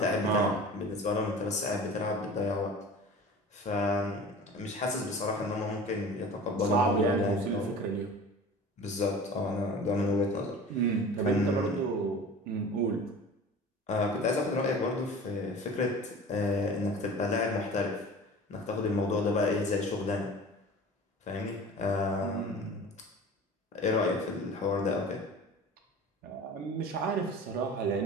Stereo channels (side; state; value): both; normal; correlation 0.39